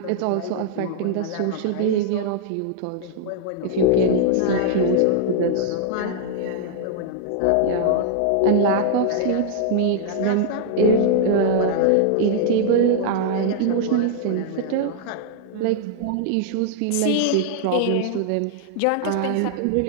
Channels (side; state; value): both; different; correlation -0.01